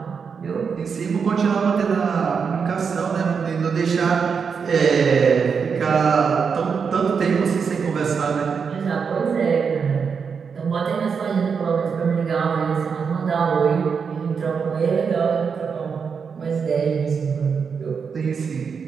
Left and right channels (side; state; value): left; quieter; 6.0 dB